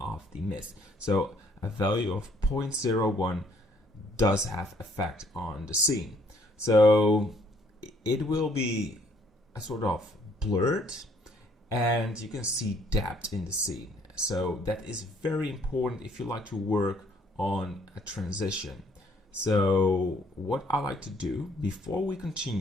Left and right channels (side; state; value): both; normal; correlation 0.64